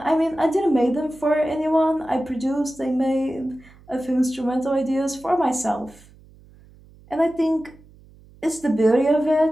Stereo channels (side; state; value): right; noise; hum, 25 dB below the sound